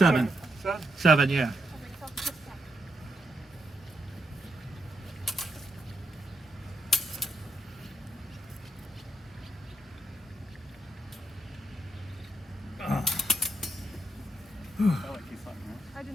7? 7, yeah. I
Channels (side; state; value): both; normal; correlation 0.80